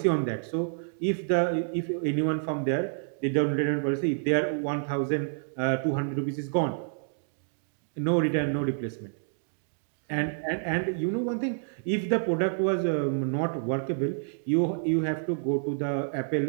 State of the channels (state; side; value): silent; left; digital silence